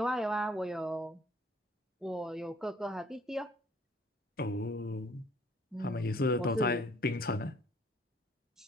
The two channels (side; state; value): both; normal; correlation 0.58